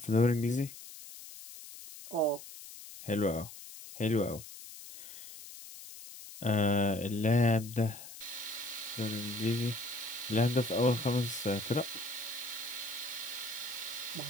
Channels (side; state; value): left; noise; hiss, 14 dB below the sound